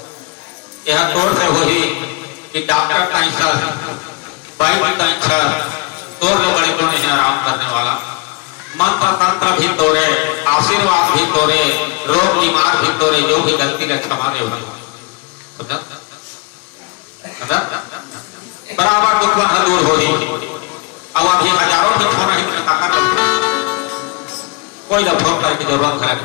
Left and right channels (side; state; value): right; quieter; 28.0 dB